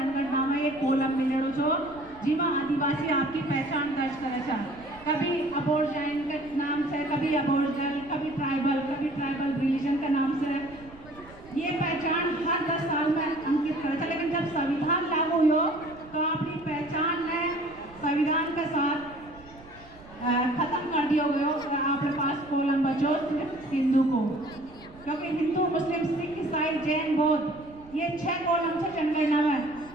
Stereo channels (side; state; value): right; noise; rumble, 22 dB below the sound